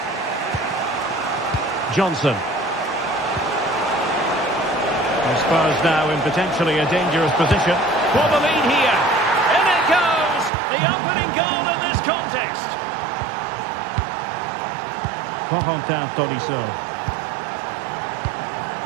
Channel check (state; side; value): drops out; left; at 10.5 s